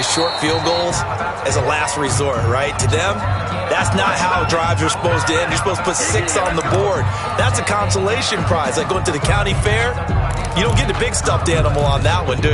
short field goals as a last resort, right? To them, that's not how drives are supposed to end. You're supposed to put 6 on the board. That's a consolation prize. Like going to the county fair, you don't get the big stuffed animal on that one, do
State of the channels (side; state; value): both; identical; correlation 1.00